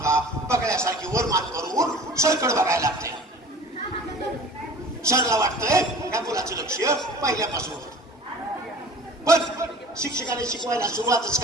बघण्यासारखी वर मान करून सरकड बघायला लागते. सरला वाटतंय या मुलाचं लक्ष पहिल्यापासून होतं. पण शिक्षकाने शिकवायला सुरुवातच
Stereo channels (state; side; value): normal; both; correlation 0.43